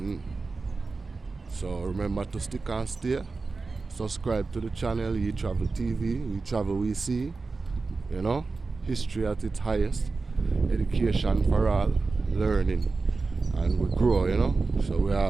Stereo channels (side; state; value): left; quieter; 4.0 dB